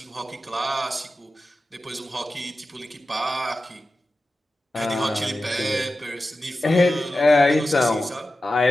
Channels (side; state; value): both; normal; correlation 0.93